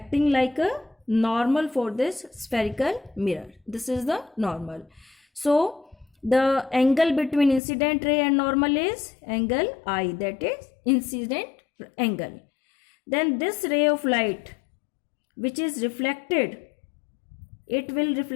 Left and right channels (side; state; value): right; drops out; at 7.6 s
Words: like a normal for this spherical mirror. This is the normal. So the angle between incident ray and normal is angle I, that is incident angle. Then this ray of light which is reflected, it will